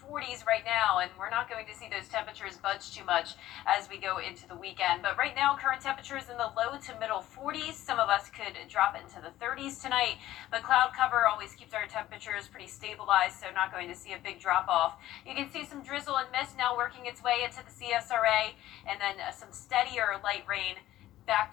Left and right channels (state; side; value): quieter; right; 14.5 dB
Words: 40s right now, and we're not going to see those temperatures budge too much as we go into the weekend. But right now, current temperatures in the low to middle 40s. Some of us could drop into the 30s tonight, but cloud cover always keeps our temperatures pretty stabilized, so not going to see a big drop off. You can see some drizzle and mist now working its way into the CSRA, and then some steadier light rain